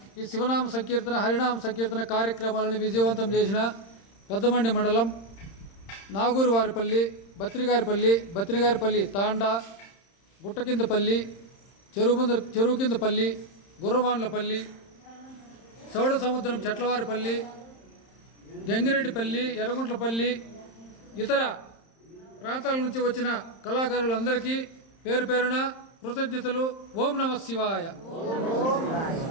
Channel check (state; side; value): late; right; 31 ms